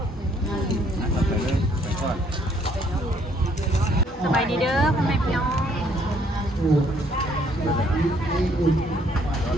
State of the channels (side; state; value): both; normal; correlation 0.66